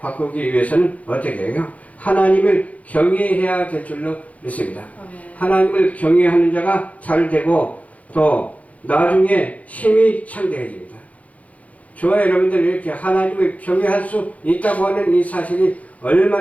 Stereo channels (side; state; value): right; late; 0.069 ms